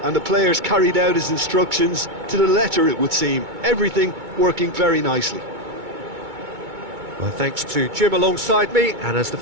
and the players carried out his instructions to the letter, it would seem. Everything working very nicely. Well, thanks to Jim alongside me, and as the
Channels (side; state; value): left; late; 2.2 ms